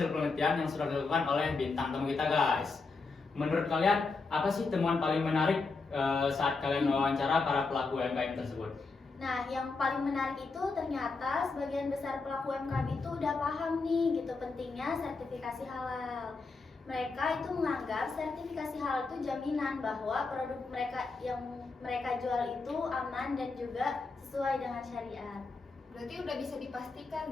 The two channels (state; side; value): quieter; right; 4.1 dB